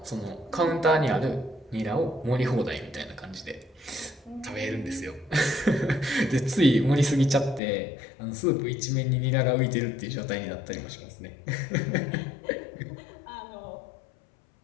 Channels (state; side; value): drops out; right; at 7.6 s